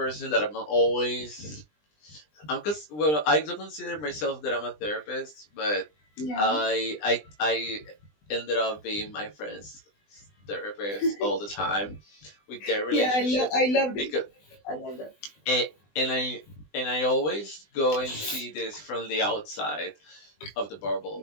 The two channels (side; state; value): right; late; 20 ms